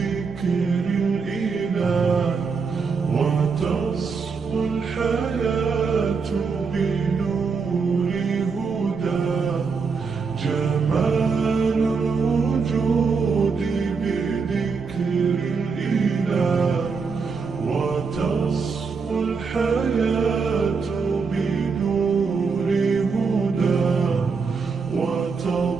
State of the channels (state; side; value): quieter; left; 5.1 dB